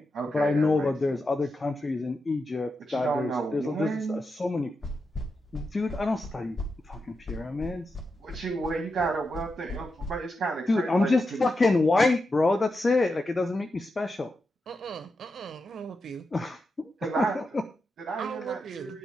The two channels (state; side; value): normal; both; correlation 0.87